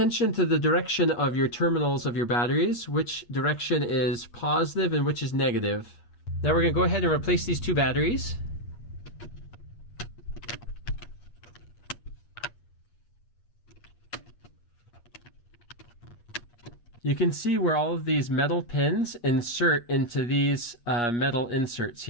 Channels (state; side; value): late; right; 8.4 ms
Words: to the direction of your terminals of your batteries, which direction is positive and which is negative. Now we're going to go ahead and replace these two batteries. You can see where all of these metal pins insert into these metal inserts